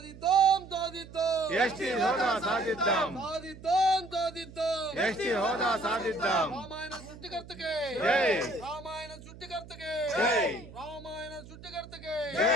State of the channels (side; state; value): right; noise; hum, 17 dB below the sound